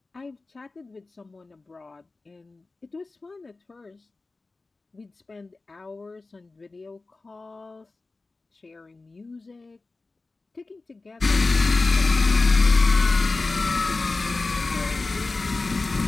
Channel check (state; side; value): quieter; right; 3.5 dB